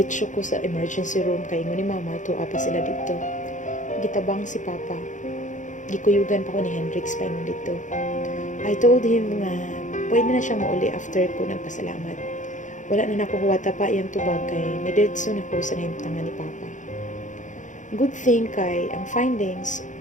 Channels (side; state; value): right; late; 0.36 ms